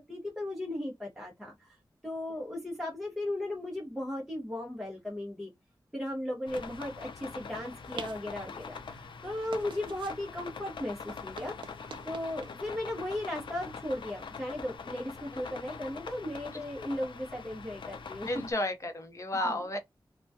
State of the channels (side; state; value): both; normal; correlation 0.77